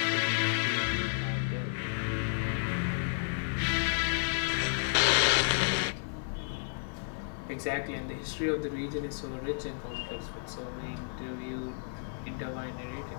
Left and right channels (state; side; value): silent; right; 56 dB below the other